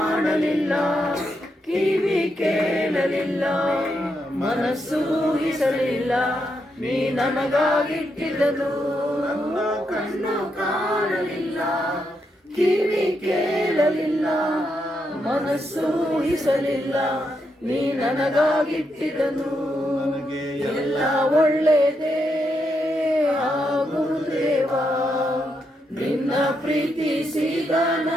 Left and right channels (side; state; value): both; normal; correlation 0.81